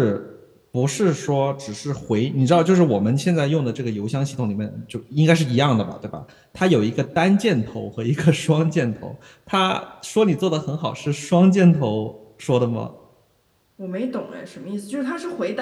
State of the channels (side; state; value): both; identical; correlation 1.00